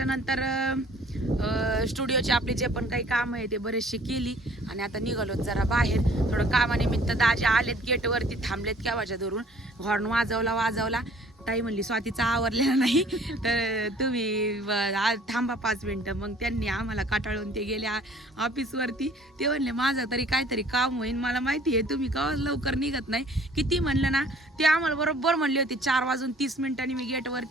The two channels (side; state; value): both; normal; correlation 0.54